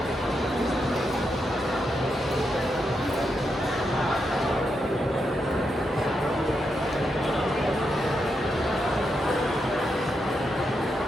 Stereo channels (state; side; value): normal; both; correlation 0.83